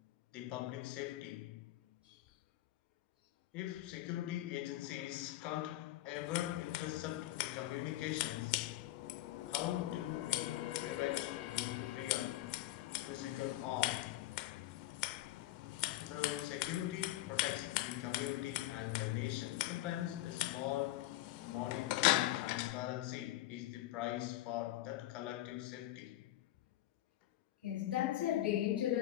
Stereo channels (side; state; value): right; quieter; 15.5 dB